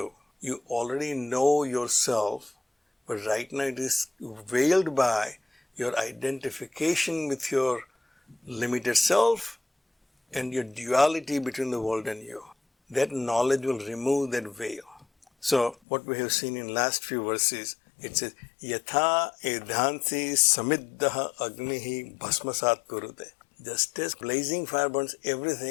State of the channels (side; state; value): right; drops out; at 15.8 s